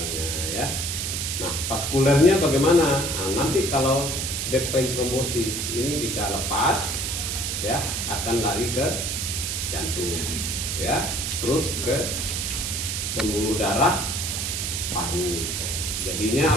ya. Nah, vaskulernya bagaimana? Nah, nanti kalau deep vein thrombosis ini bisa lepas, ya, akan lari ke jantung, ya, terus ke pembuluh darah paru. Jadinya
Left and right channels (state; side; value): noise; right; hiss, 2 dB below the sound